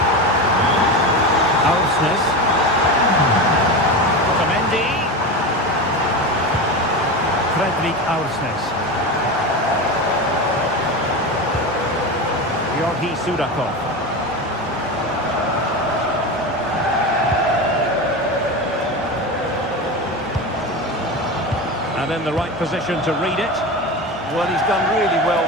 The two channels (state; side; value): normal; both; correlation 0.23